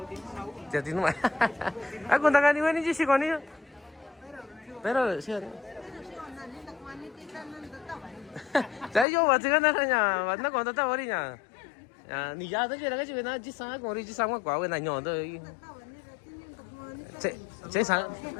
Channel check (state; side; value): drops out; right; at 9.1 s